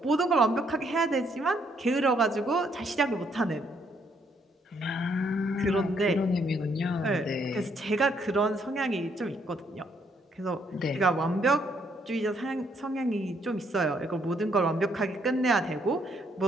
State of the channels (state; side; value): normal; both; correlation 0.71